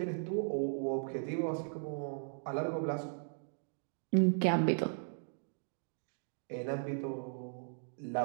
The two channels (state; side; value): silent; left; digital silence